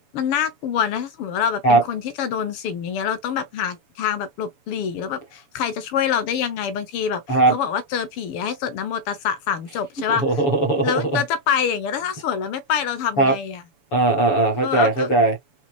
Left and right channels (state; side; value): late; right; 7.0 ms